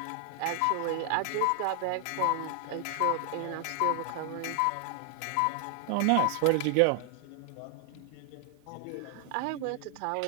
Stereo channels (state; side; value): different; both; correlation 0.00